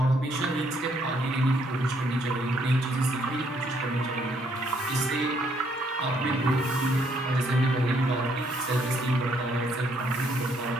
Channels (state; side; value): normal; both; correlation 0.69